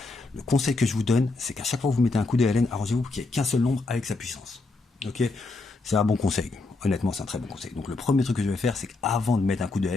Le conseil que je vous donne, c'est qu'à chaque fois que vous mettez un coup de ln, arrangez-vous pour qu'il n'y ait qu'un seul nombre avec sa puissance. Ok, c'est un bon conseil. Honnêtement, c'est un très bon conseil. Donc le premier truc que je vais faire, c'est qu'avant de mettre un coup de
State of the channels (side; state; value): right; quieter; 3.4 dB